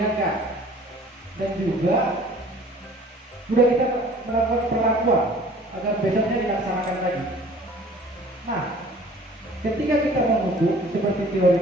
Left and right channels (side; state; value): both; normal; correlation 0.50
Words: dan juga sudah kita melakukan perlakuan agar besoknya dilaksanakan lagi. Nah, ketika kita mengukur seperti